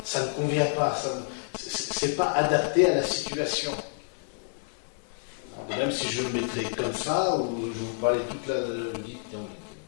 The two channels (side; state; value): right; silent; 59 dB below the other